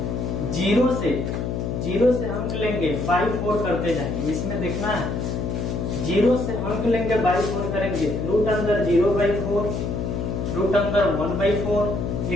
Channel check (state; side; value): noise; left; hum, 2 dB below the sound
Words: 0 से अंक लेंगे, बाई 4 करते जाएंगे। इसमें देखना है 0 से अंक लेंगे, बाई 4 करेंगे। रूट अंदर 0/4, रूट अंदर 1/4,